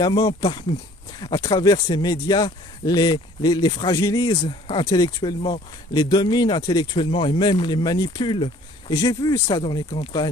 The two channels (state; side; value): normal; both; correlation 0.54